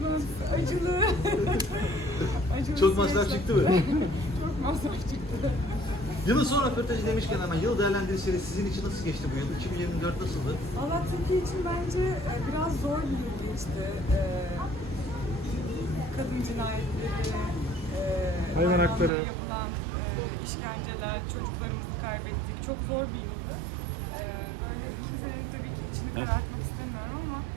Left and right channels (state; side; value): drops out; left; at 19.1 s